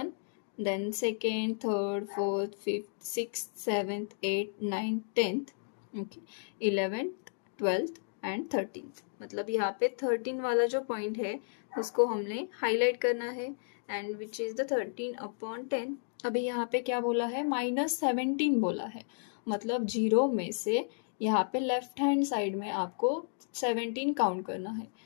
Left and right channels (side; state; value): right; silent; digital silence